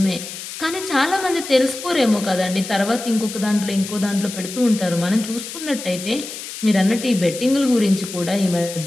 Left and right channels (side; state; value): left; noise; hiss, 10 dB below the sound